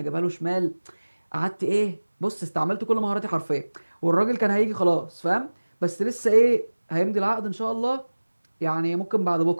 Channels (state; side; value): inverted; both; correlation -1.00